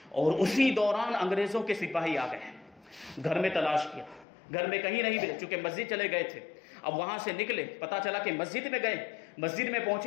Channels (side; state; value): right; drops out; at 4.2 s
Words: اور اسی دوران انگریزوں کے سپاہی آ گئے. گھر میں تلاش کیا، گھر میں کہیں نہیں ملے، چونکہ مسجد چلے گئے تھے. اب وہاں سے نکلے، پتا چلا کہ مسجد میں گئے، مسجد میں